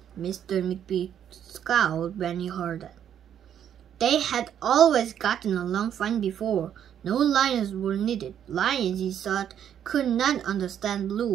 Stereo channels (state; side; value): quieter; left; 9.5 dB